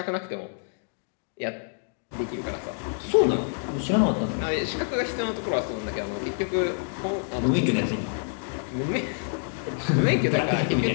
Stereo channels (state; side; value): silent; right; 60 dB below the other